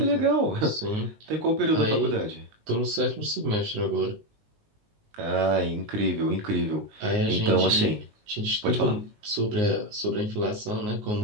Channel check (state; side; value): late; left; 19 ms